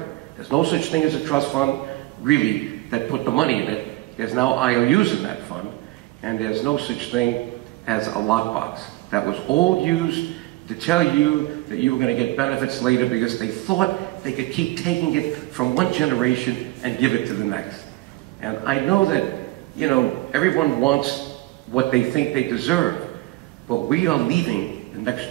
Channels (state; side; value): quieter; left; 19.2 dB